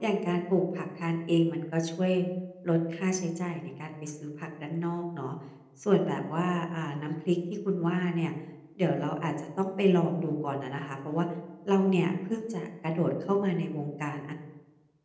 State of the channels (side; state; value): both; identical; correlation 1.00